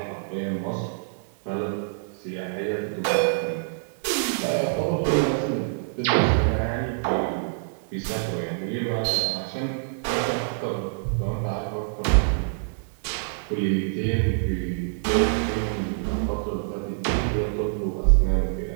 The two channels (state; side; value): silent; left; digital silence